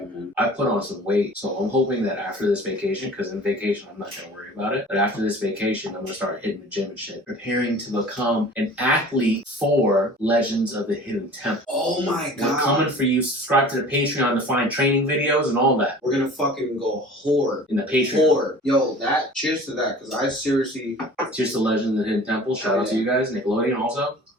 man. I put on some weight, so I'm hoping that after this vacation, because in vacation I'm not going to worry about it, but after this vacation I'm going to start hitting the gym and shit, preparing to become an athlete for Legends of the Hidden Temple. Oh my god. We're coming for you. Subscribe to the Patreon to find training videos and all that. We're gonna fucking go horde. In the Patreon. Horde. Yo, cheers to that, because I seriously... Cheers to Legends of the Hidden Temple. Shout out to you guys. Nickelodeon also.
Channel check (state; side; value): normal; both; correlation 0.43